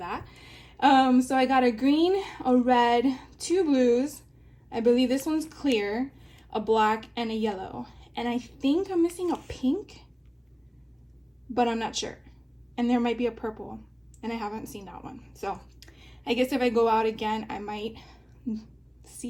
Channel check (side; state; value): both; identical; correlation 1.00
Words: So I got a green, a red, 2 blues. I believe this one's clear, a black, and a yellow. And I think I'm missing a pink, but I'm not sure. And there might be a purple, and I haven't seen that one. So I guess if I go out again, I might